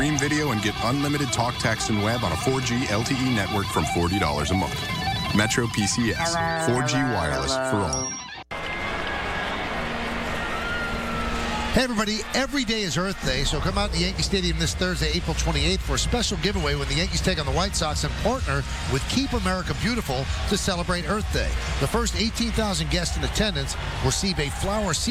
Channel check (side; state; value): both; identical; correlation 1.00